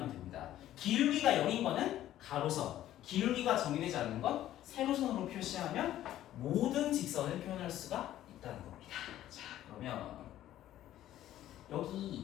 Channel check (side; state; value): right; quieter; 13.0 dB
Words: 됩니다. 기울기가 0인 거는 가로선, 기울기가 정의되지 않는 건 세로선으로 표시하면 모든 직선을 표현할 수가 있다는 겁니다. 자, 그러면